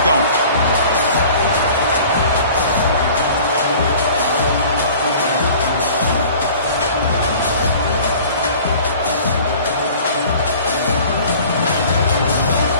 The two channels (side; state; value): both; inverted; correlation -0.46